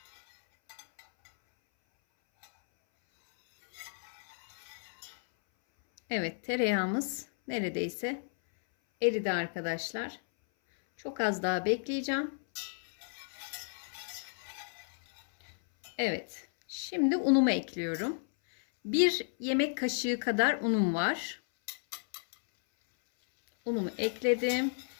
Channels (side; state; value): right; silent; 56 dB below the other